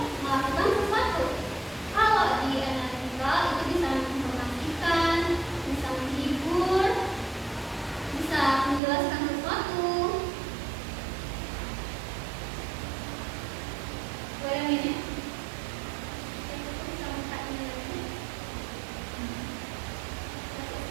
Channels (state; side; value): drops out; left; at 8.8 s